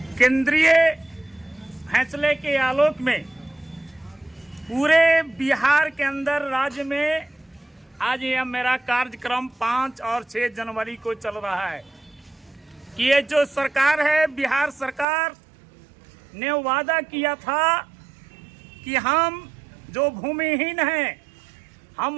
केंद्रीय फैसले के आलोक में पूरे बिहार के अंदर राज्य में आज यह मेरा कार्यक्रम 5 और 6 जनवरी को चल रहा है कि ये जो सरकार है, बिहार सरकार ने वादा किया था कि हम जो भूमिहीन हैं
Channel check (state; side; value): drops out; left; at 15.1 s